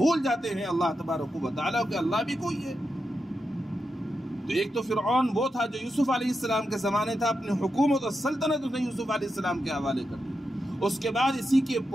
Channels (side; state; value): both; normal; correlation 0.87